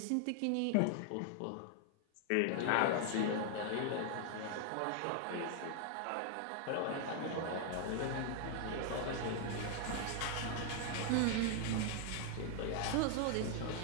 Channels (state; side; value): different; both; correlation 0.00